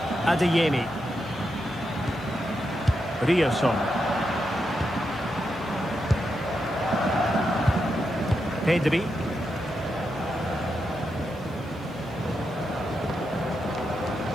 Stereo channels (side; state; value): left; noise; hiss, 28 dB below the sound